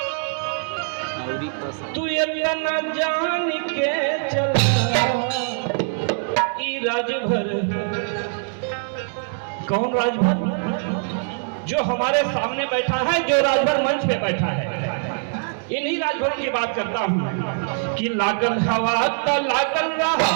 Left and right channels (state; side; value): silent; left; digital silence